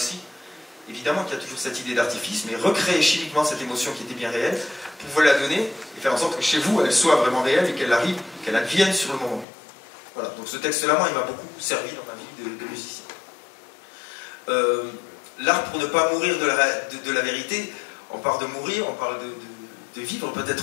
Évidemment qu'il y a toujours cette idée d'artifice, mais recréer chimiquement cette émotion qui était bien réelle, pour vous la donner et faire en sorte que chez vous, elle soit vraiment réelle et qu'elle arrive, qu'elle advienne sur le moment. Voilà, donc ce texte-là, moi, il m'a beaucoup servi dans ma vie de musicien. L'art pour ne pas mourir de la vérité, on parle de mourir, on parle de vivre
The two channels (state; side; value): drops out; right; at 9.5 s